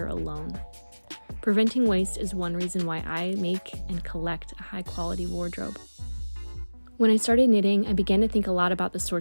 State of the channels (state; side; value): inverted; both; correlation -1.00